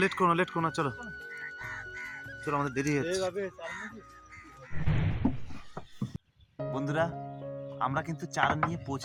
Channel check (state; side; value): identical; both; correlation 1.00